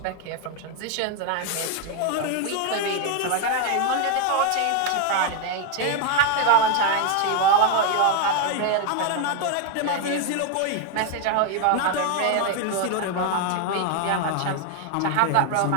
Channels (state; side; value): different; both; correlation 0.00